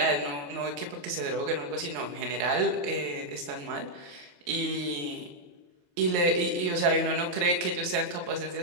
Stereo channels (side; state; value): left; late; 28 ms